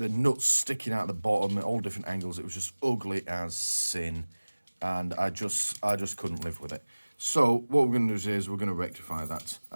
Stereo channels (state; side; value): inverted; both; correlation -1.00